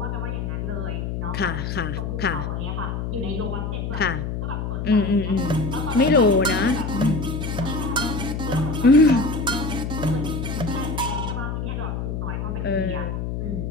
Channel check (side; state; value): left; noise; hum, 3 dB below the sound